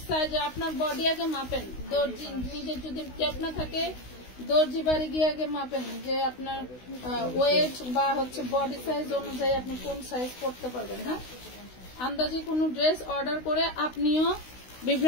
সাইজে আপনার বডি আগে মাপেন। দর্জি নিজের যদি ক্যাপ না থাকে, দর্জি বাড়ি গিয়ে আগে মাপেন যে আপনার ওয়েট বা হচ্ছে বডি সাইজ অনুযায়ী আপনি কোন সাইজ পড়তে পারবেন। হ্যাঁ, আন্দাজে কোনো ড্রেস অর্ডার করে আপনিও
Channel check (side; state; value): right; late; 16 ms